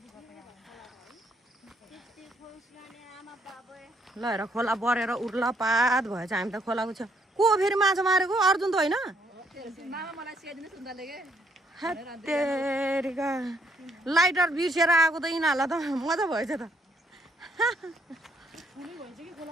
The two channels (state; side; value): normal; both; correlation 0.70